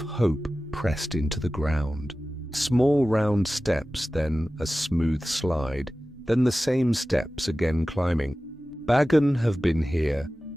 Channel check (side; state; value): both; normal; correlation 0.96